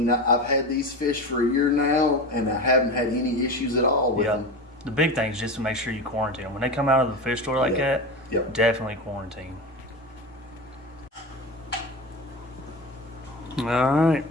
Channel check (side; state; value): both; normal; correlation 0.25